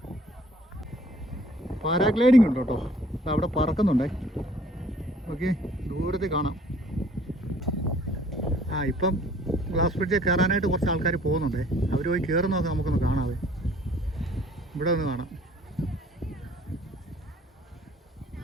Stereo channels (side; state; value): both; normal; correlation 0.56